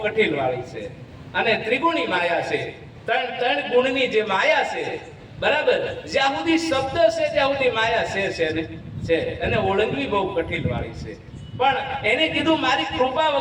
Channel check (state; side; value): identical; both; correlation 1.00